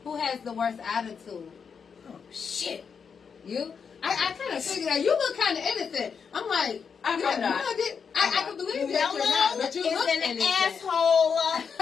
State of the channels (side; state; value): right; quieter; 6.3 dB